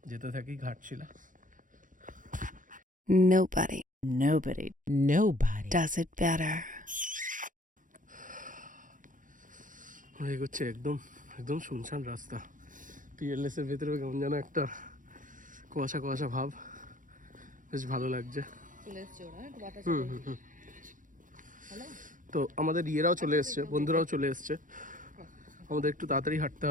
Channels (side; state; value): left; late; 0.38 ms